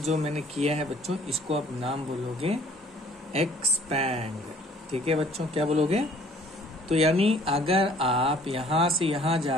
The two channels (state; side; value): normal; both; correlation 0.56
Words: मैंने किया है बच्चों इसको आप नाम बोलोगे एक्सपैंड. ठीक है बच्चों. क्या बोलोगे. तो यानी अगर आप यहाँ से यहाँ